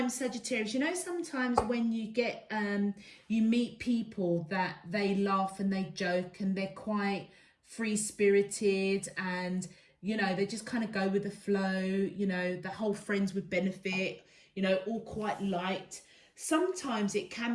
Sagittarius, you know sometimes when you get, you meet people that they laugh and they joke and they're quite free-spirited and, you know, they just kind of go with the flow, you know, the whole friends with benefit, you know, all quite light. sometimes it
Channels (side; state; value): both; identical; correlation 1.00